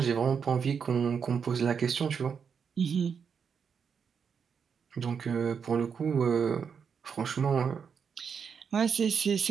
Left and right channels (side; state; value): left; quieter; 6.6 dB